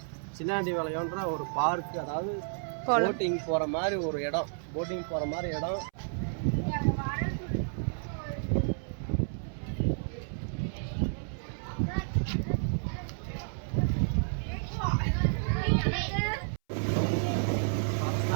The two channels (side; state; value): left; silent; 57 dB below the other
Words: சின்னாண்டி வளையம்ன்ற ஒரு பார்க்கு, அதாவது போட்டிங் போகிற மாதிரி ஒரு இடம்.